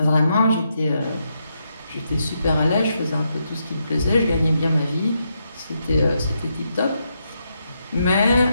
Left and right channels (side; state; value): both; inverted; correlation -0.81